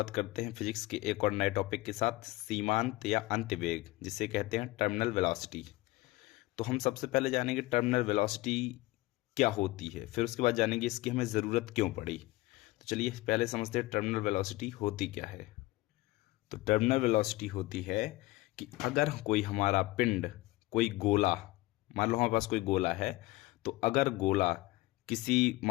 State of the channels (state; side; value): quieter; right; 19.3 dB